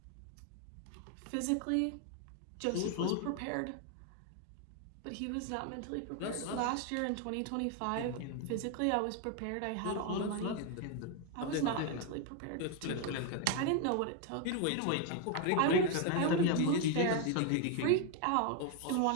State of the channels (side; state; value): both; different; correlation 0.01